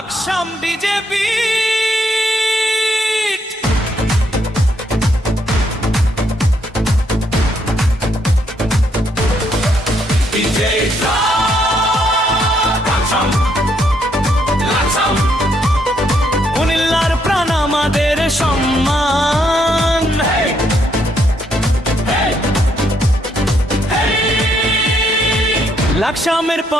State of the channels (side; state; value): both; normal; correlation 0.73